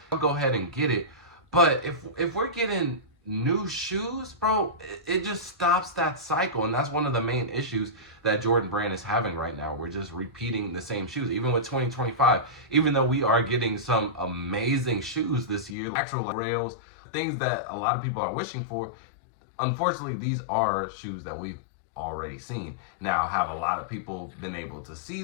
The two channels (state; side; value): drops out; right; at 15.8 s